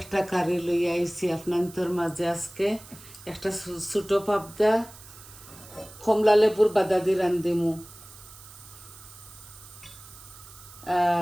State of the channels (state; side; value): noise; right; hiss, 19 dB below the sound